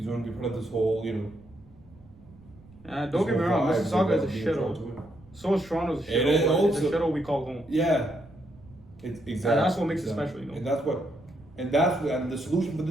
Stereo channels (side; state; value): right; noise; rumble, 24 dB below the sound